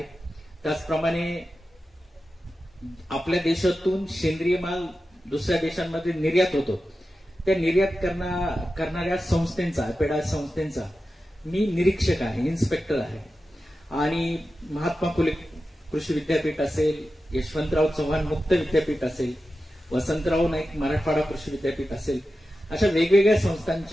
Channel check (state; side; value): normal; both; correlation 0.92